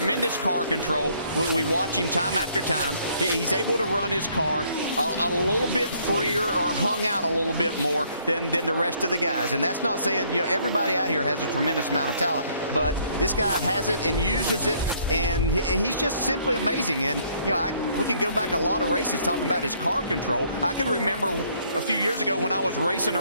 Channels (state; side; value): inverted; both; correlation -0.65